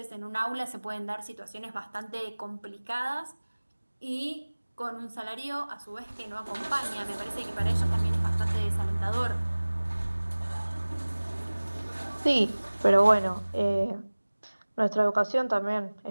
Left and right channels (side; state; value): both; inverted; correlation -1.00